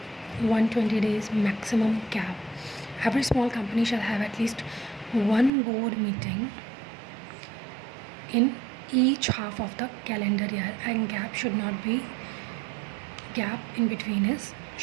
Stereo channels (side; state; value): left; drops out; at 5.5 s